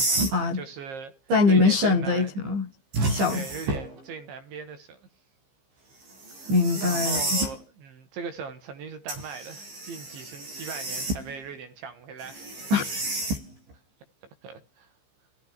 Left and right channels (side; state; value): left; late; 15 ms